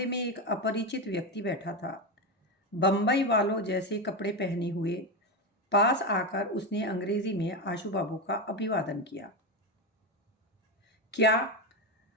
में एक अपरिचित व्यक्ति बैठा था, बंबई वालों जैसे कपड़े पहने हुए। पास आकर उसने अंग्रेजी में आशु बाबू का अभिवादन किया। क्या?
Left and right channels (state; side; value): normal; both; correlation 0.14